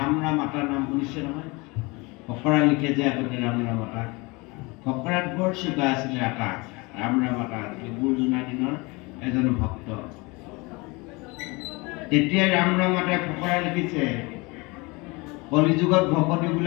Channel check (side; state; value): right; quieter; 25.9 dB